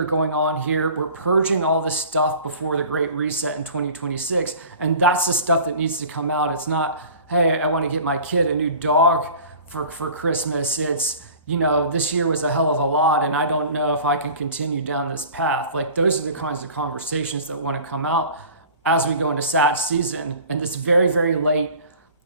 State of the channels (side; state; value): both; inverted; correlation -0.43